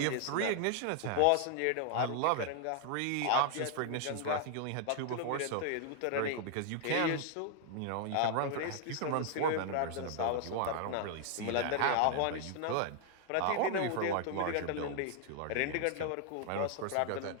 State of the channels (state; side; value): different; both; correlation 0.00